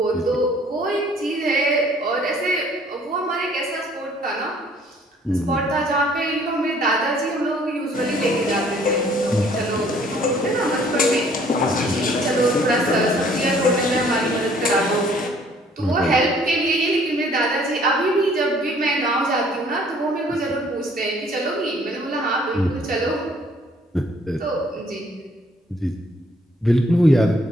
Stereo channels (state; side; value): normal; both; correlation 0.59